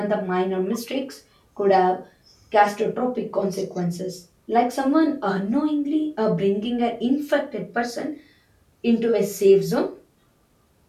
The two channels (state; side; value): identical; both; correlation 1.00